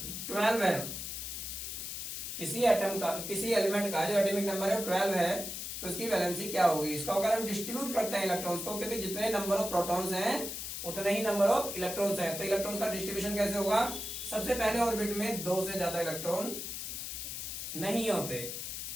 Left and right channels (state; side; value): noise; left; hiss, 6 dB below the sound